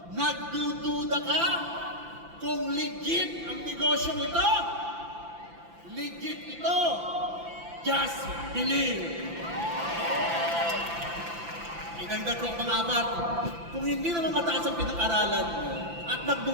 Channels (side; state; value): left; late; 5.9 ms